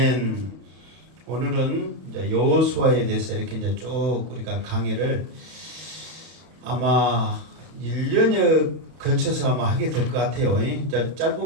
오늘은 이제 여호수아에 대해서 이렇게 이제 쭉 우리가 강의를 아마 1년에 거쳐서 아마 하게 될 것 같아요. 이제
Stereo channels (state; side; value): late; left; 31 ms